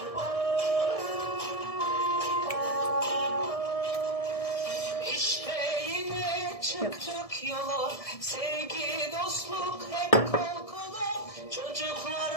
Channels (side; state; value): right; late; 1.7 ms